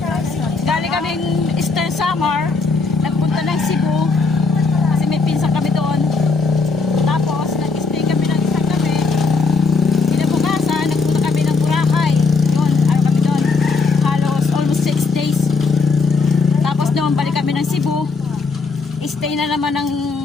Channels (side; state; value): right; quieter; 4.3 dB